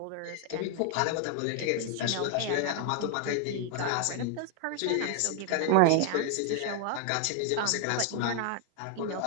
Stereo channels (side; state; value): both; different; correlation 0.00